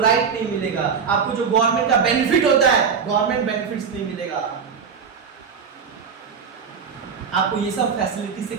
नहीं मिलेगा, आपको जो गवर्नमेंट का बेनिफिट होता है, गवर्नमेंट बेनिफिट्स नहीं मिलेगा। आपको ये सब फैसिलिटी से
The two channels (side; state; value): left; quieter; 6.3 dB